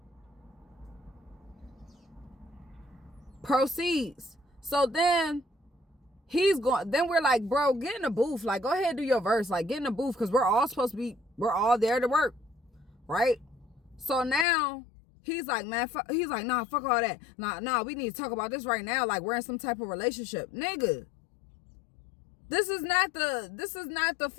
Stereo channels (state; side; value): drops out; right; at 14.5 s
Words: Proceeds. So then then we're like, bro, get in the booth. Like, go ahead, do your verse. Like, get in the booth, because we're all there to work, right? So now he's like, man, he's like, nah, fuck all that. Nah, we need to talk about this right now. Like, we're in some type of relationship. Nigga, this is not the